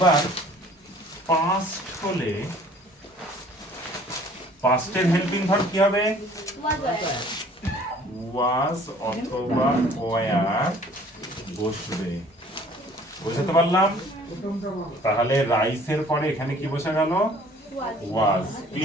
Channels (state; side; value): normal; both; correlation 0.54